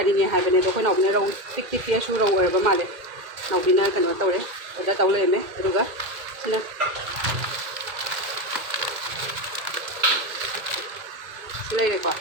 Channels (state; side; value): late; left; 2.2 ms